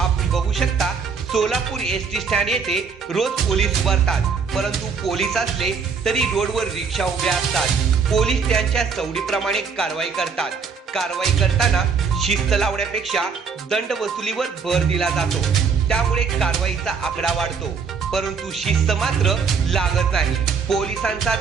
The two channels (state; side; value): quieter; left; 5.6 dB